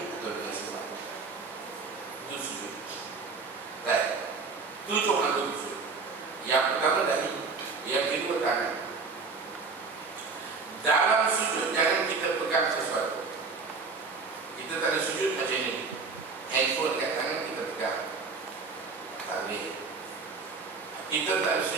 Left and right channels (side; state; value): left; quieter; 4.5 dB